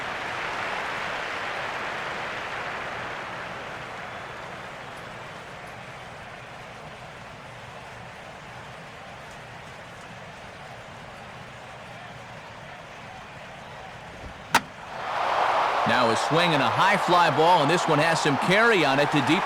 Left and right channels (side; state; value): both; identical; correlation 1.00